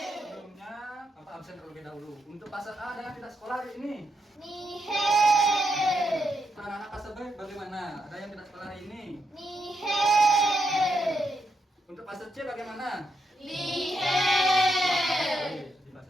Sebelumnya, Bapak absen terlebih dahulu. Untuk fase A ada yang tidak sekolah hari ini? Anak-anak fase B bagaimana? Ada yang tidak sekolah hari ini? Untuk fase C bagaimana? Di fase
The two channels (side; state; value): both; normal; correlation 0.81